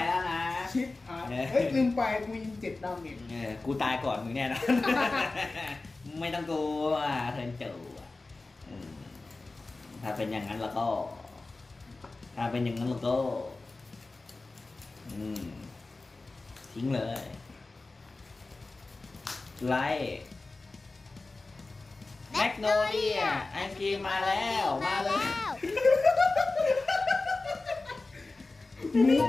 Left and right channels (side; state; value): right; quieter; 3.4 dB